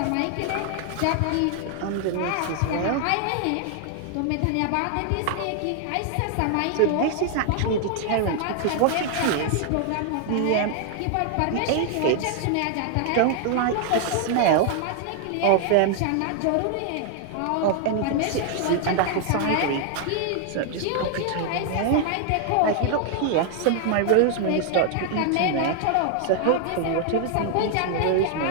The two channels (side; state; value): both; different; correlation 0.00